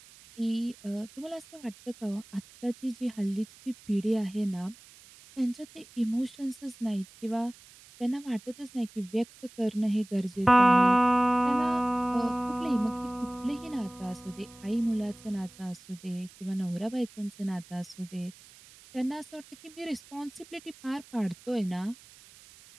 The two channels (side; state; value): right; noise; hiss, 22 dB below the sound